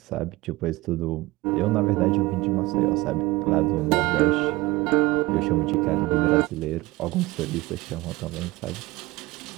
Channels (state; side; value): quieter; left; 20.6 dB